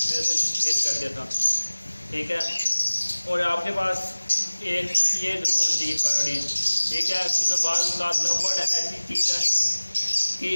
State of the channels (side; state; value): both; inverted; correlation -1.00